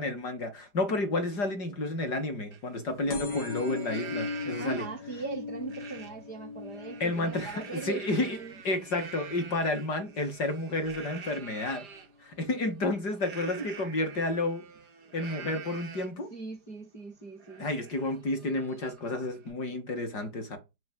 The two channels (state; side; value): late; right; 5.0 ms